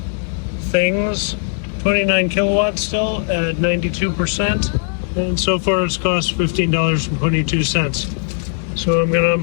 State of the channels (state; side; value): silent; right; 67 dB below the other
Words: things. 29 kilowatts still at 92%. And so far it's cost $15.22. So I'm gonna